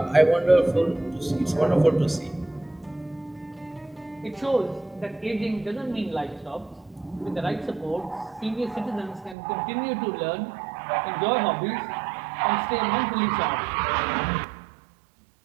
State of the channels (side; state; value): left; drops out; at 9.3 s